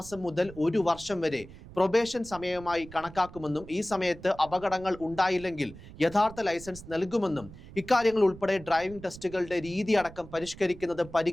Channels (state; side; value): noise; right; rumble, 17 dB below the sound